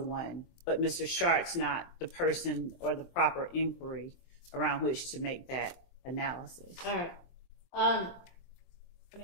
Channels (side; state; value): right; late; 23 ms